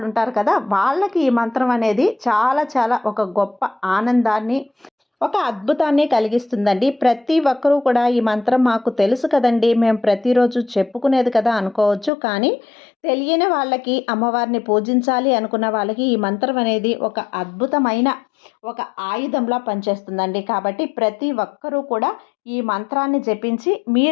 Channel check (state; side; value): drops out; right; at 12.1 s